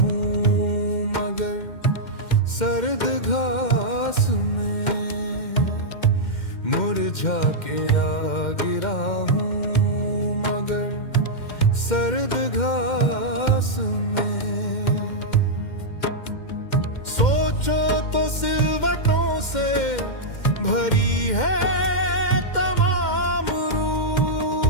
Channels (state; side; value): late; right; 2.1 ms